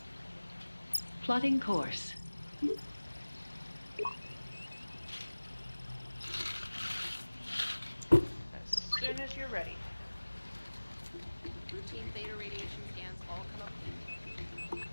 Plotting course. As soon as you're ready. routine theta radiation scans all come up clean.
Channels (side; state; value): both; inverted; correlation -1.00